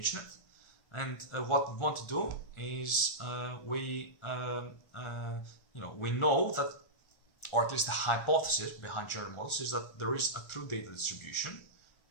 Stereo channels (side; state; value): right; late; 1.4 ms